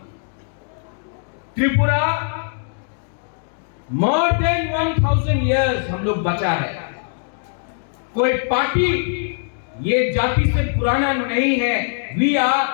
त्रिपुरा मोर देन 1000 इयर्स हम लोग बचा है। कोई पार्टी ये जाति से पुराना नहीं है। We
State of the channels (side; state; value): right; silent; digital silence